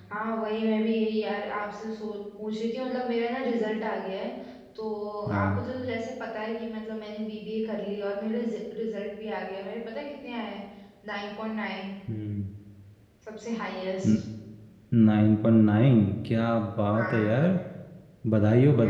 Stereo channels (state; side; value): identical; both; correlation 1.00